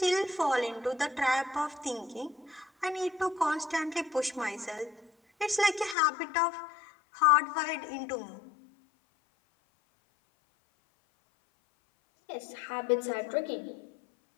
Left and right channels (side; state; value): right; drops out; at 6.0 s